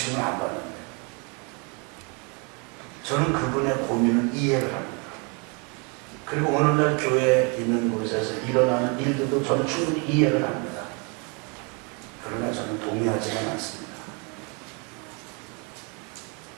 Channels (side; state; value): left; quieter; 33.4 dB